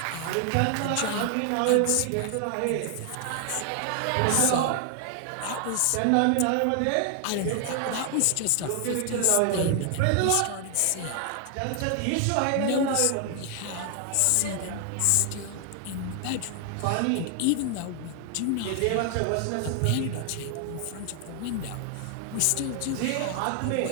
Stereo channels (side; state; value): both; different; correlation 0.00